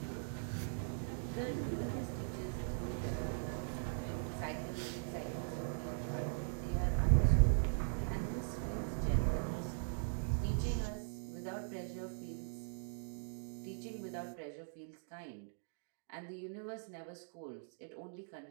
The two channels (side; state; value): left; silent; digital silence